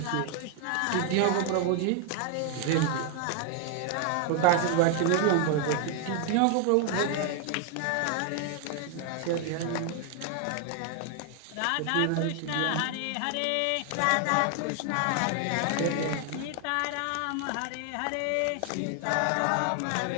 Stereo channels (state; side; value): different; both; correlation 0.00